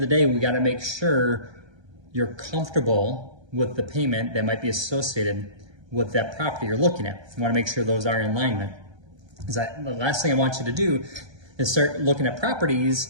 the day, we gotta make sure you're comfortable with the payment that might be associated with that property you're looking at. You wanna make sure those are in alignment. The last thing I want you to do is start looking at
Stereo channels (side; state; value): left; late; 1.3 ms